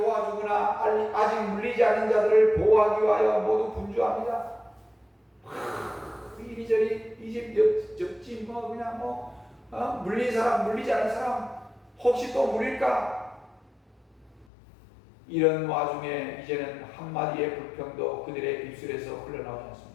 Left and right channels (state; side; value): drops out; right; at 14.5 s